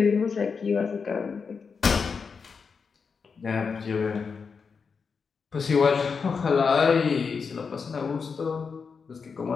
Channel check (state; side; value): quieter; right; 5.5 dB